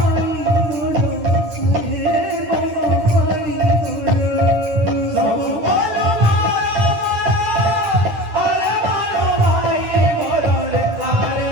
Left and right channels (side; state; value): left; late; 9.5 ms